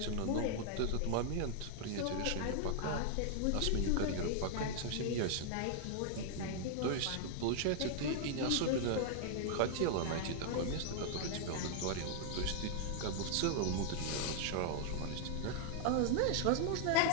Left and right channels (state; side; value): different; both; correlation -0.01